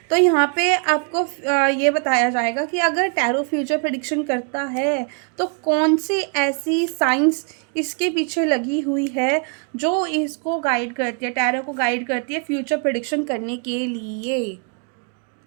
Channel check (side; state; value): left; quieter; 37.9 dB